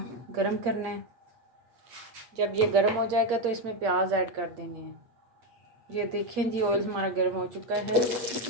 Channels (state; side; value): late; left; 8.4 ms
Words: गरम करना है। जब ये गरम हो जाएगा तो इसमें प्याज ऐड कर देने हैं। ये देखें जी, ऑयल हमारा गर्म हो चुका है।